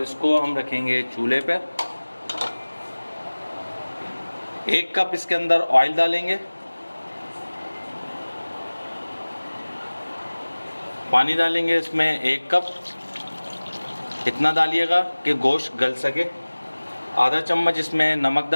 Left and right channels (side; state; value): both; inverted; correlation -1.00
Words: इसको हम रखेंगे चूल्हे पर। 1 कप इसके अंदर ऑयल डालेंगे। पानी डालेंगे इसमें 1 कप। इतना डालिएगा कि गोश्त गल सके। आधा चम्मच इसमें नमक